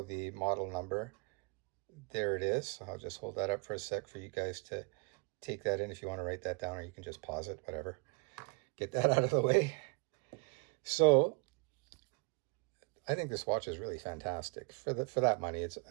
the model number, there it is. So I'll just hold that up for a sec for you guys to take that in if you want to write that down, or you can just pause it, whatever. Get that out of the way. So I think this watch is really fantastic. For that money,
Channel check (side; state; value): left; quieter; 33.5 dB